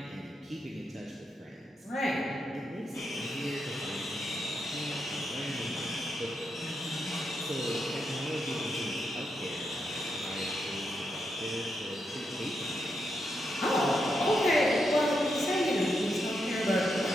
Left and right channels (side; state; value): both; normal; correlation 0.83